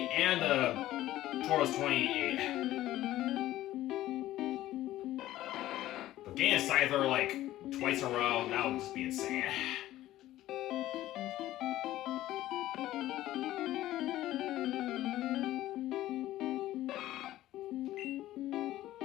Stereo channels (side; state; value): right; quieter; 14.7 dB